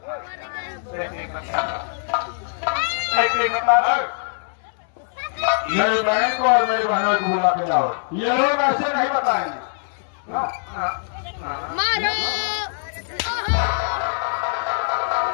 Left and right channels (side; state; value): right; silent; 62 dB below the other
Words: मेरी बहन को और मेरी बहनों को बुला के लाओ। ये लोग ऐसे नहीं बताएंगे। मारो